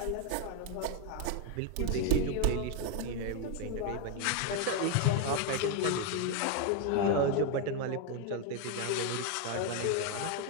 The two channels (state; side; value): different; both; correlation 0.01